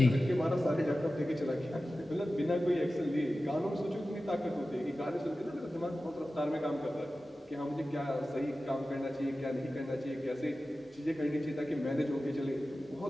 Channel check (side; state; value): both; normal; correlation 0.95